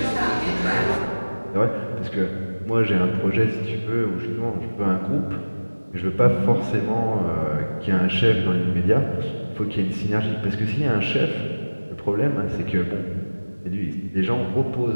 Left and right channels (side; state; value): both; inverted; correlation -1.00